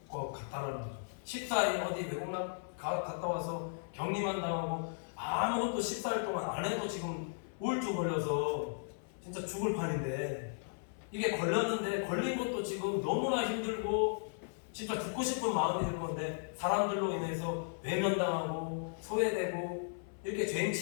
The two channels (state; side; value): silent; right; 54 dB below the other